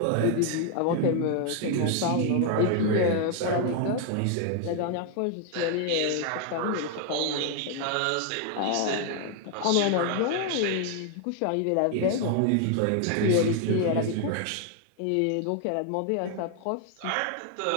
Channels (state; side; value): different; both; correlation 0.00